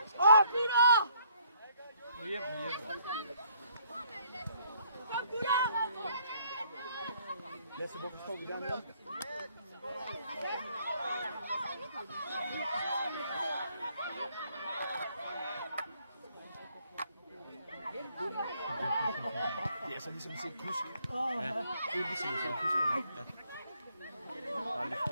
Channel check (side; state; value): both; inverted; correlation -0.65